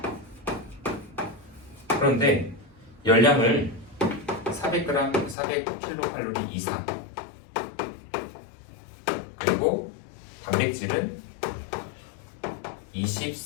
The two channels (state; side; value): drops out; right; at 5.4 s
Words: 그런데 열량을 400g, 400kcal 이상, 그리고 단백질은